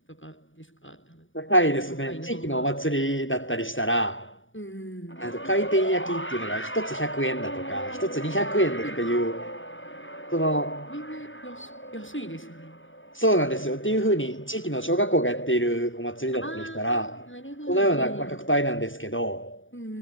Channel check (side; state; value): right; late; 0.57 ms